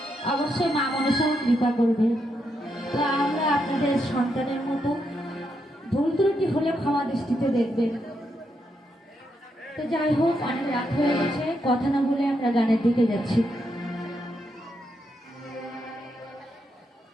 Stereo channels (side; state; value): both; normal; correlation 0.81